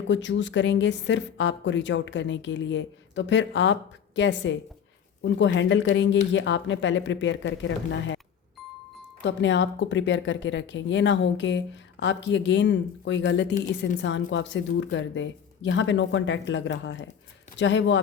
चूज़ करेंगे सिर्फ आपको रीच आउट करने के लिए। तो फिर आप कैसे उनको हैंडल करेंगे, ये आपने पहले प्रिपेयर करके रखना है। तो अपने आप को प्रिपेयर करके रखें। ये ना हो कि आपकी अगेन कोई गलती इस इंसान को आपसे दूर कर दे। यहाँ पे नो कांटेक्ट लग रहा है, चाहे वो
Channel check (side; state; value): right; quieter; 8.0 dB